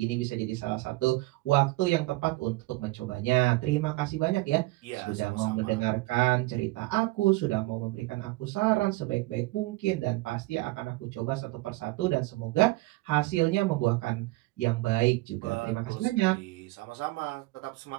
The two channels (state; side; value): quieter; left; 20.6 dB